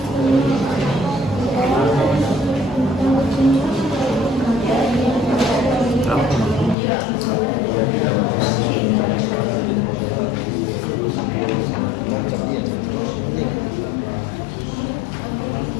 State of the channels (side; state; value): right; drops out; at 6.8 s